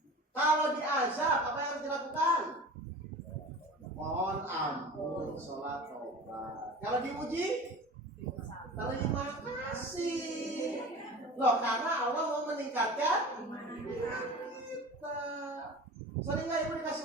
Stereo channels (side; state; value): both; normal; correlation 0.37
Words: Kalau diazab, apa yang harus dilakukan? Mohon ampun, sholat, tobat. Kalau diuji, terima kasih. Loh, karena Allah mau meningkatkan iman kita. Sering nggak ibu dikasih